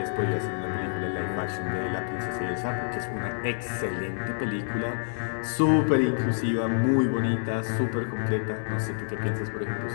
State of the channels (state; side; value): silent; right; digital silence